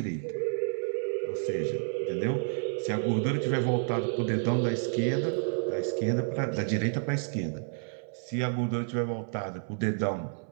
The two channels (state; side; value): silent; left; 58 dB below the other